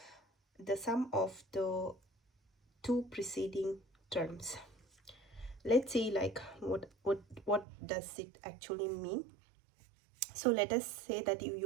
the sum of the two preceding terms. Let's see like what does it actually mean. So let us say that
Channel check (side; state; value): left; drops out; at 7.7 s